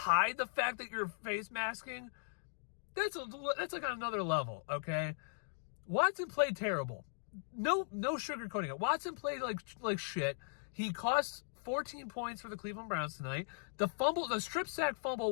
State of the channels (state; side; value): silent; right; digital silence